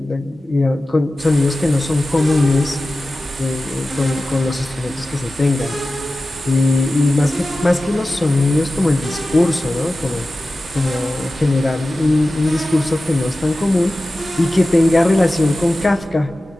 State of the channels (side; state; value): both; normal; correlation 0.95